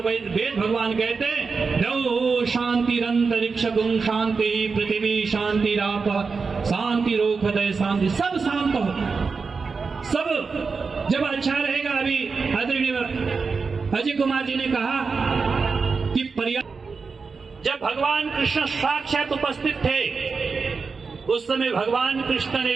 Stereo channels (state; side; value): quieter; left; 4.8 dB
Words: वेद भगवान कहते हैं, द्यौः शांतिरंतरिक्षं शांति पृथ्वी शांतिराप शांति रोखदय शांति। सब शांत हो, सब जब अच्छा रहेगा। अभी आदरणीय अजय कुमार जी ने कहा कि जब भगवान कृष्ण साक्षात उपस्थित थे, उस समय भगवान कृष्ण